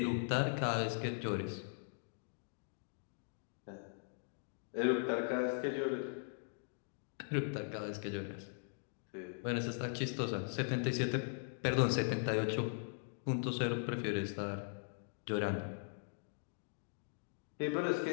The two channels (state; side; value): silent; right; digital silence